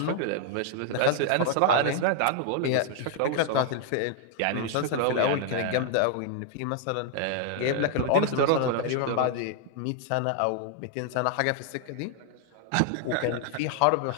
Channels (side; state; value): both; different; correlation 0.00